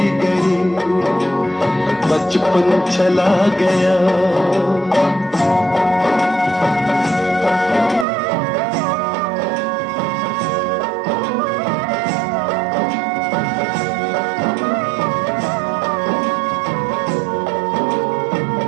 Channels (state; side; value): drops out; left; at 8.1 s